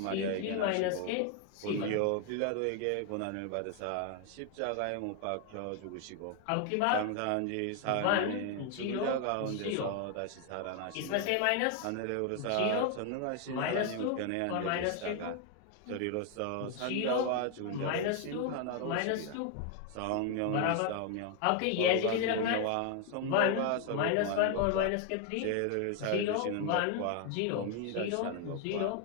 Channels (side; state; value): both; different; correlation 0.01